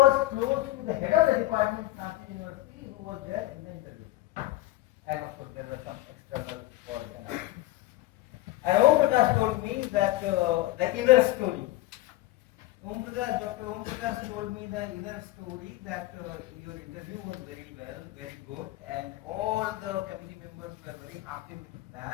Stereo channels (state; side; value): quieter; right; 16.6 dB